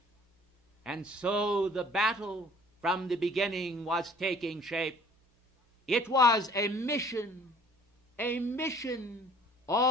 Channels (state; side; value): normal; both; correlation 0.53